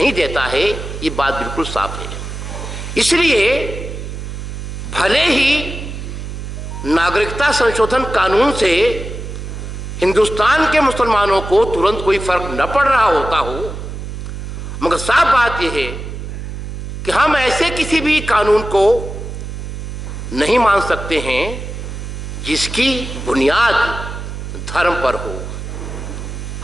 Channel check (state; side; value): noise; right; hum, 7 dB below the sound